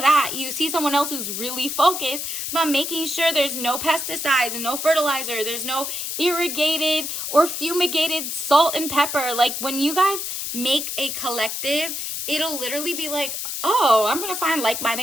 you see someone else who's really focused about making sure there's no pesticides and no fertilizer. There's no irrigated or fumigated salt and pepper. Like when you guys make a collective, it'll literally be like, oh, I'm going to find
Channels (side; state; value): left; noise; hiss, 4 dB below the sound